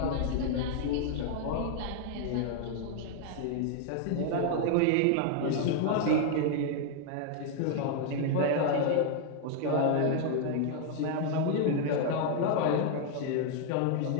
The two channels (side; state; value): both; different; correlation 0.00